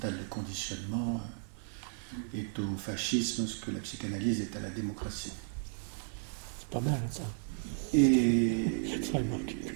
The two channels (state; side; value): silent; left; 55 dB below the other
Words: de conditionnement est au fascisme ce que la psychanalyse est à la démocratie. C'est pas mal, ça. Et Très remarque.